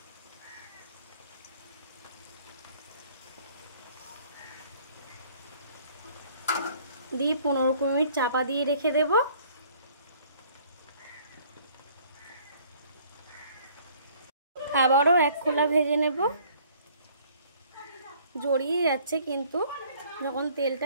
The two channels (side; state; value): both; inverted; correlation -0.57